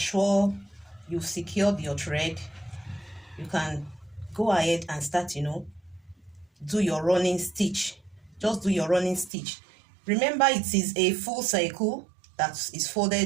you've secured your thread, you can go ahead and start, you know, do your running stitch. Just do your running stitch. Remember, it is a full circle that is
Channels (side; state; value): left; drops out; at 9.3 s